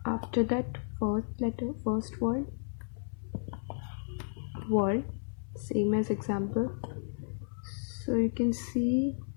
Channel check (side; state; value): right; silent; 56 dB below the other